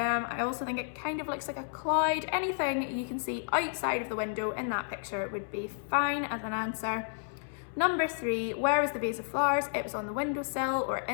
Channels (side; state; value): right; silent; 57 dB below the other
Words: also think it kind of looks like a cloud. Anything you can see outside of the window in that picture would be fine as an answer. Number 3, where was the vase of flowers? It was on the windowsill or